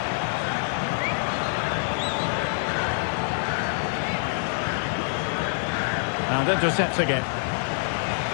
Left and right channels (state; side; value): silent; right; digital silence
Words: And intercepts again.